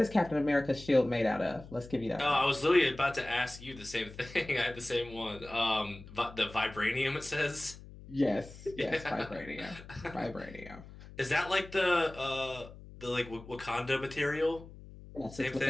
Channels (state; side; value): noise; left; hum, 17 dB below the sound